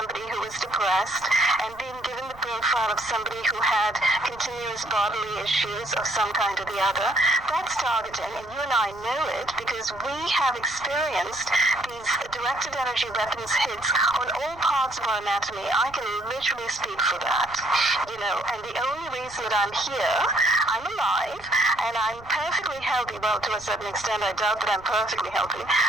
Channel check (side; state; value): right; noise; rumble, 22 dB below the sound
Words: who was depressed and being given the profile of somebody who had continuous bodily issues of some kind or the other, that's targeting. And you and I know it because we have experienced these directed energy weapons hits on all parts of our anatomy. I can literally speak for that, and the only reason that I'm here, I'm alive, and I'm perfectly healthy. Well, to a certain extent, I doubt that I'm perfectly healthy,